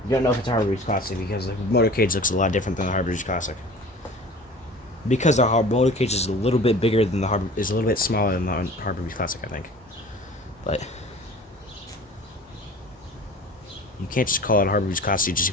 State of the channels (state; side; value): normal; both; correlation 0.43